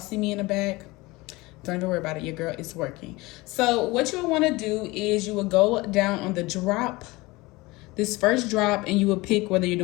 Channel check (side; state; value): right; quieter; 22.1 dB